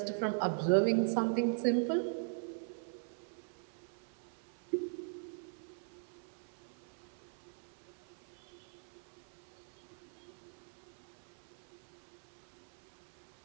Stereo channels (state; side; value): silent; left; 50 dB below the other